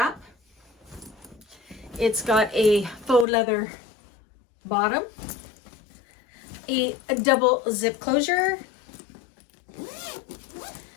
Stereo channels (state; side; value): drops out; right; at 3.2 s